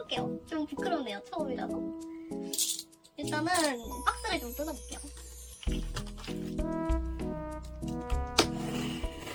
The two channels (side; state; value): both; identical; correlation 1.00